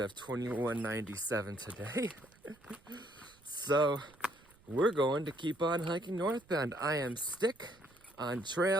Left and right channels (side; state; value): right; noise; rumble, 28 dB below the sound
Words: 2197 today. So we're going to keep on hiking northbound. I am Stick on